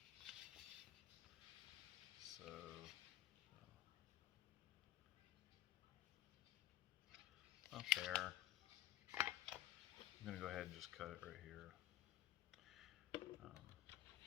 So up there. I'm going to go ahead and just cut it right here.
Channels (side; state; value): right; quieter; 13.6 dB